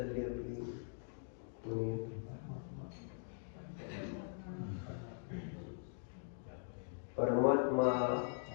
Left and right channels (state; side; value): silent; right; digital silence